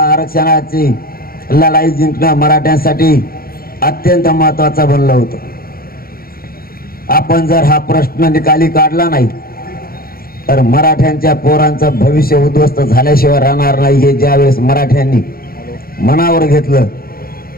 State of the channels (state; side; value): late; right; 0.43 ms